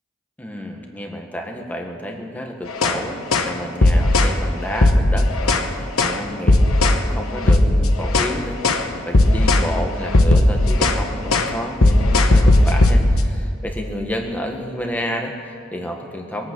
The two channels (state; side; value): normal; both; correlation 0.81